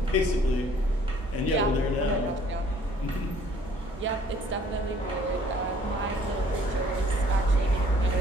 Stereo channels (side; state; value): both; normal; correlation 0.58